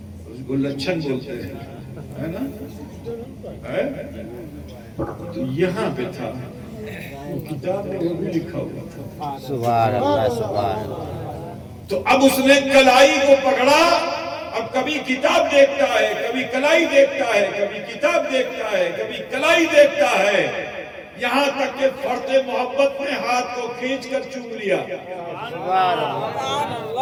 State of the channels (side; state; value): both; identical; correlation 1.00